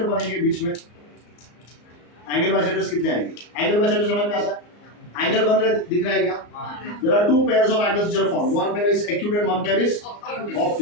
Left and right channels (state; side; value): late; right; 34 ms